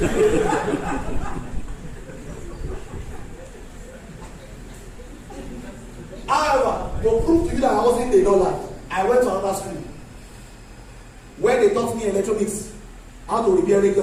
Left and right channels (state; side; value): identical; both; correlation 1.00